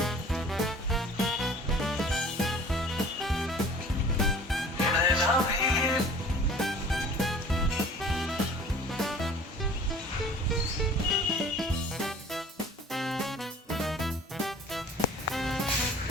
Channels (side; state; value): both; normal; correlation 0.47